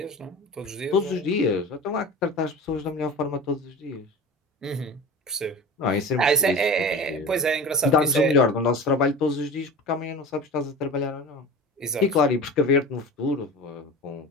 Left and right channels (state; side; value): normal; both; correlation 0.34